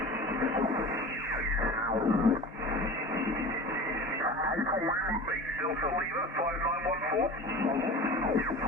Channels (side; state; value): both; normal; correlation 0.35